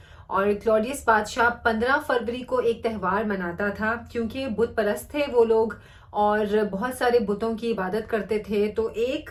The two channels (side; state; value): both; identical; correlation 1.00